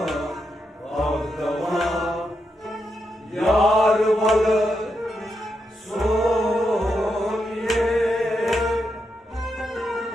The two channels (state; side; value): normal; both; correlation 0.84